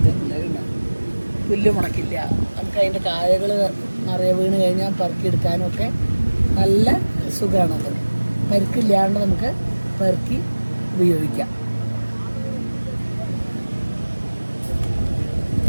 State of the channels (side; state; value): both; inverted; correlation -1.00